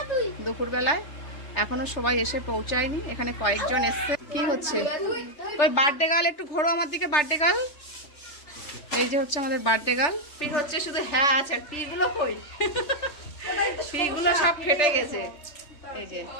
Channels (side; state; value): right; late; 3.4 ms